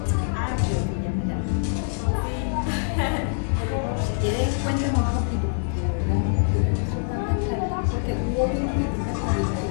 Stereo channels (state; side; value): silent; right; 62 dB below the other